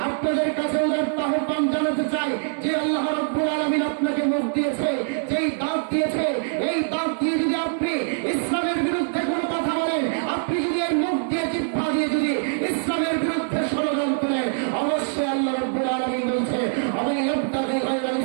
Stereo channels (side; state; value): left; silent; 63 dB below the other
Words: আপনাদের কাছে উদারতা আহ্বান জানাতে চাই যে আল্লাহ রাব্বুল আলামিন আপনাকে মুখ দিয়েছে, যেই দাঁত দিয়েছে, এই দাঁত দিয়ে যদি আপনি ইসলামের বিরুদ্ধে কোনো কথা বলেন, আপনি যদি এর মুখ দিয়ে জিহ্বা দিয়ে যদি ইসলামের বিরুদ্ধে ষড়যন্ত্র করেন, অবশ্যই আল্লাহ রাব্বুল আলামিন বলছে আমি ইবতাগি গায়রাল